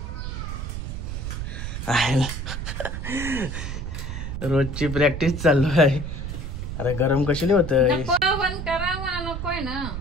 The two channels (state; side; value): noise; right; rumble, 5 dB below the sound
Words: रोजची प्रॅक्टिस चालू आहे. अरे गरम कशी होत नकोय ना